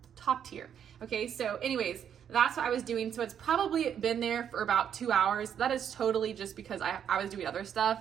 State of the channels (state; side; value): quieter; left; 8.7 dB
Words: top tier. Okay, so anyways, that's what I was doing. So it's probably been there for about 2 hours. That is totally just because I was doing other